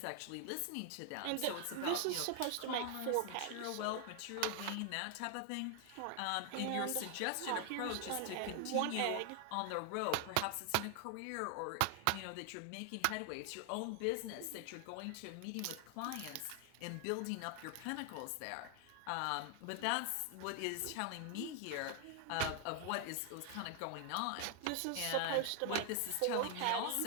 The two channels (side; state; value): both; different; correlation 0.00